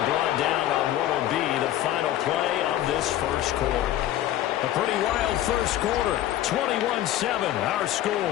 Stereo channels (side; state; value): right; quieter; 13.0 dB